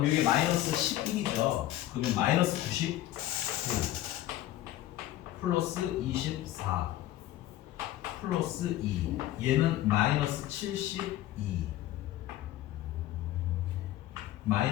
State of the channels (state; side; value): quieter; right; 14.3 dB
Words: 이게 마이너스 11이죠. 그러면 마이너스 99 플러스 24 플러스 2. 얘는 마이너스 72